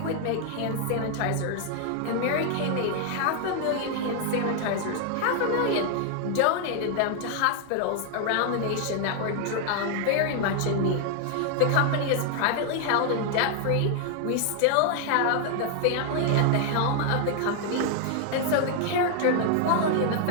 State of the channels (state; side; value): different; both; correlation 0.00